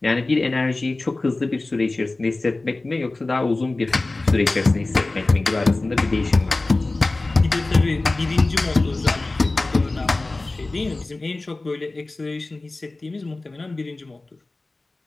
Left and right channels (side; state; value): right; quieter; 3.1 dB